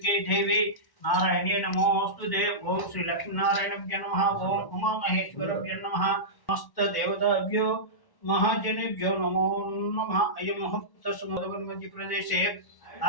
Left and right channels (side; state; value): right; late; 1.1 ms